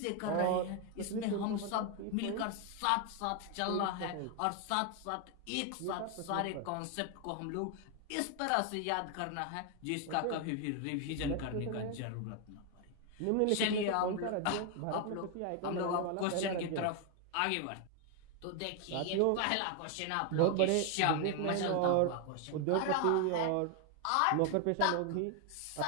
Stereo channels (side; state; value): both; different; correlation 0.01